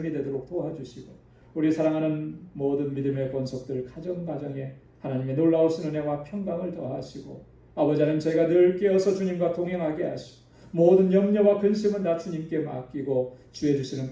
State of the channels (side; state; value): both; identical; correlation 1.00